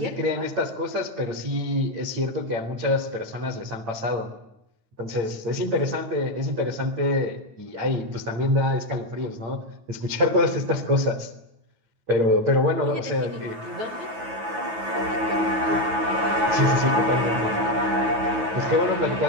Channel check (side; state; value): left; late; 9.3 ms